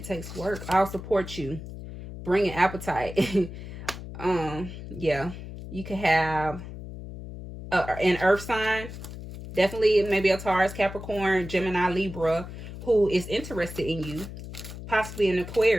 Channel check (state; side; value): noise; left; hum, 11 dB below the sound